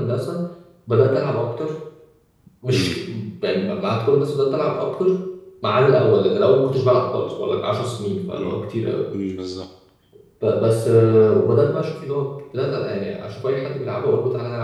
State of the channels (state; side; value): identical; both; correlation 1.00